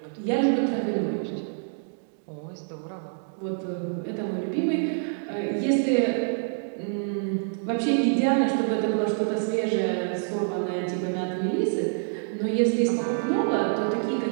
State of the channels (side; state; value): left; silent; digital silence